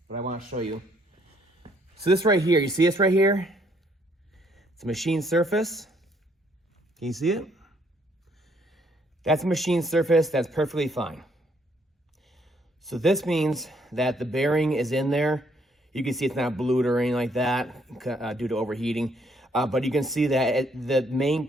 but I want to show you. So this right here, you see this right here? It's a machine surface. Can you see it? That's a machine surface, that's perfectly fine. So this means that the bearing is in there. You can see it's not blued or anything like that due to overheating. But you can see that the main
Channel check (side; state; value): both; normal; correlation 0.68